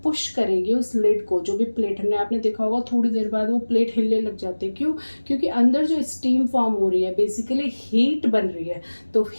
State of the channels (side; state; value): both; inverted; correlation -1.00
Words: पुश करेगी उस लिड को. जो भी प्लेट हमने, आपने देखा होगा थोड़ी देर बाद वो प्लेट हिलने लग जाती है. क्यों? क्योंकि अंदर जो स्टीम फॉर्म हो रही है, बेसिकली हीट बन रही है. तो